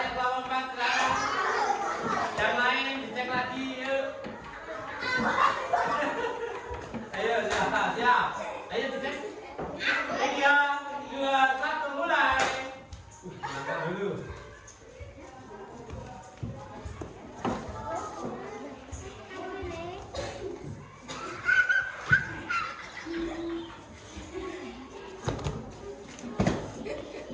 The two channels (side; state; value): both; identical; correlation 1.00